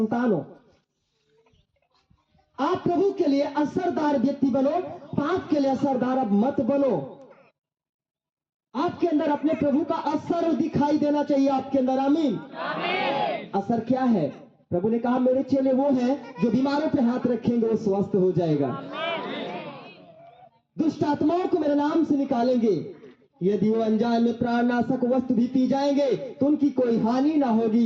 हो। आप प्रभु के लिए असरदार व्यक्ति बनो, पाप के लिए असरदार अब मत बनो। आपके अंदर अपने प्रभु का असर दिखाई देना चाहिए आपके अंदर। आमीन। असर क्या है? प्रभु ने कहा, मेरे चेले वो हैं जो बीमारों पे हाथ रखेंगे वो स्वस्थ हो जाएगा, दुष्ट आत्माओं को मेरे नाम से निकालेंगे, यदि वो अनजान में प्राणनाशक वस्तु भी पी जाएंगे तो उनकी कोई हानि ना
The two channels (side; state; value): both; identical; correlation 1.00